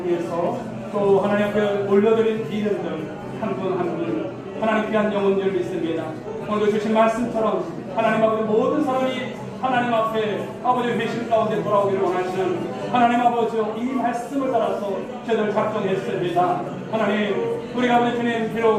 위해서 또 하나님 앞에 올려드린 이름들 한 분 한 분 하나님 귀한 영혼들 믿습니다. 오늘도 주신 말씀처럼 하나님 아버지 모든 사람이 하나님 앞에 아버지 회심 가운데 돌아오기를 원하시는 하나님 아버지 이 말씀을 따라서 저희들 작정했습니다. 하나님 우리가 아버지 주님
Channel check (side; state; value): both; identical; correlation 1.00